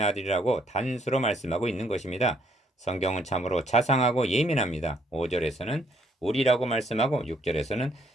아들이라고 단수로 말씀하고 있는 것입니다. 성경은 참으로 자상하고 예민합니다. 5절에서는 우리라고 말씀하고 6절에서는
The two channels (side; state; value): both; normal; correlation 0.68